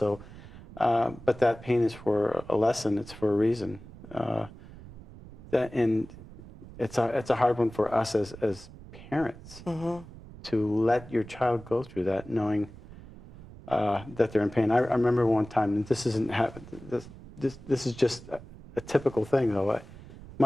but that pain is for a lesson. It's for a reason. And it's a hard one for us as parents to let your child go through that, knowing that they're in pain. I remember one time, and this isn't this is just a typical thing though.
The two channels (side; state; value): right; noise; rumble, 17 dB below the sound